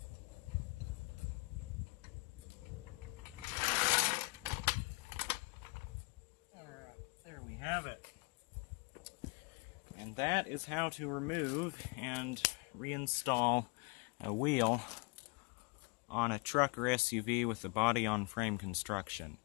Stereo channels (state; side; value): quieter; right; 30.5 dB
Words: Alright, there we have it. And that is how to remove and reinstall a wheel on a truck or SUV with the body-on-frame construction.